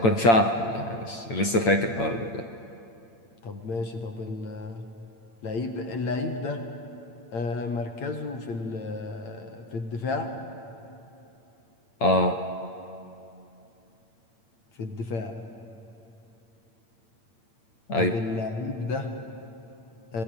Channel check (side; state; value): right; late; 8.8 ms